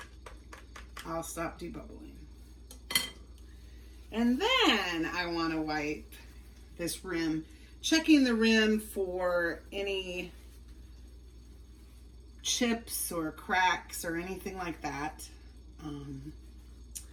I'll stop debubbling. And then I want to wipe this rim, checking the rim for any chips or cracks or anything like that. And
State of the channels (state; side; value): identical; both; correlation 1.00